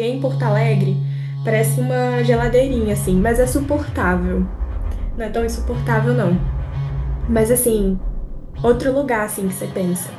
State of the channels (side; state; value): both; identical; correlation 1.00